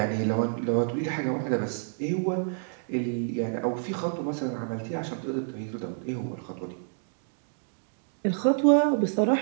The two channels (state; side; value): silent; left; digital silence